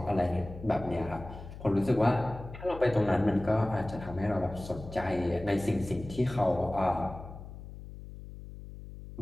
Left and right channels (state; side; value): noise; left; hum, 13 dB below the sound